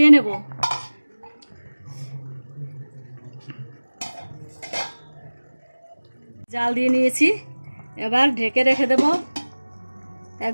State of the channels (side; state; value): both; inverted; correlation -1.00